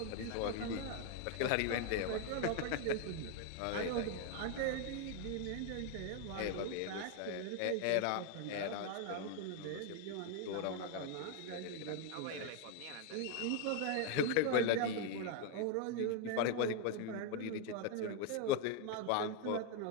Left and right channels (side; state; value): both; different; correlation 0.00